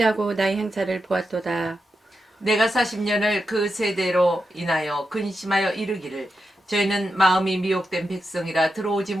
나의 행사를 보았도다. 내가 40년을 그 세대로 인하여 근심하여 이르기를 저희는 마음이 미혹된 백성이라 들어오지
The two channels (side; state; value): both; normal; correlation 0.88